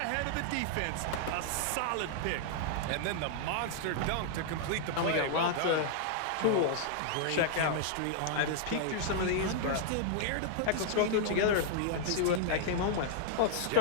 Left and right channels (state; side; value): different; both; correlation -0.01